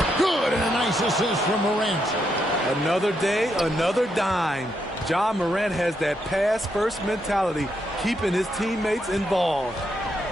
Good, and a nice assist from Morant. Another day, another dime. John Morant has that pass-first mentality, keeping his teammates involved.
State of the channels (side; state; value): both; normal; correlation 0.79